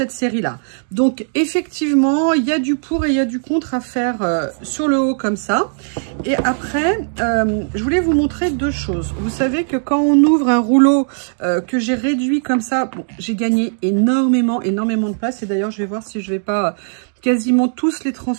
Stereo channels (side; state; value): left; silent; digital silence